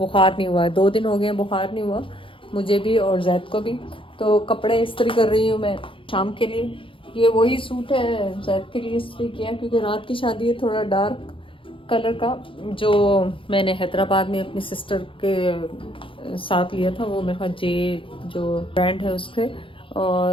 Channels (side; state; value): right; late; 0.25 ms